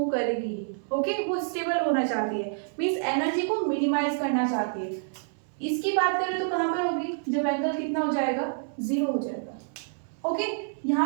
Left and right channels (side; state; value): left; silent; 60 dB below the other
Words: करेगी। ओके, वो स्टेबल होना चाहती है, मीन्स एनर्जी को मिनिमाइज करना चाहती है। इसकी बात करें तो कहाँ पर होगी, जब एंगल कितना हो जाएगा, 0 हो जाएगा। ओके,